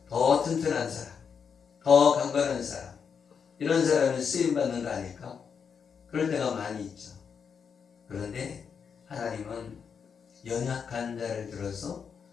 더 튼튼한 사람, 더 강건한 사람, 이런 사람은 쓰임받는 거 아닐까? 그럴 때가 많이 있죠. 그런데 하나님은 연약한 자를 들어서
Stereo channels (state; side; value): quieter; right; 6.6 dB